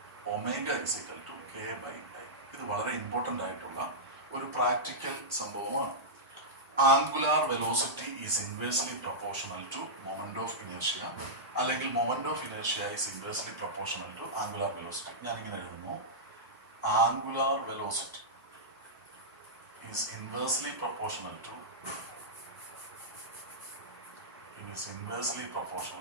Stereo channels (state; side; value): normal; both; correlation -0.12